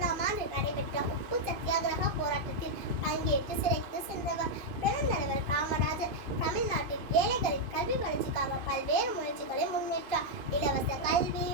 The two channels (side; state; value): left; late; 2.5 ms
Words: ஆண்டு நடைபெற்ற உப்பு சத்தியாகிரக போராட்டத்தில் பங்கேற்று சிறைக்கு சென்றவர். பெருந்தலைவர் காமராஜர் தமிழ்நாட்டில் ஏழைகளின் கல்வி வளர்ச்சிக்காக பல்வேறு முயற்சிகளை முன்னேற்றார். இலவச கல்வி,